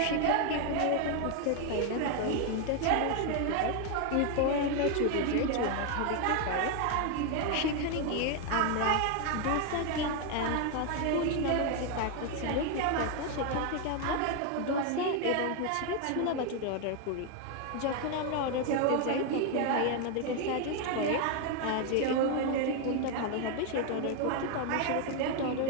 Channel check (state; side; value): different; both; correlation 0.01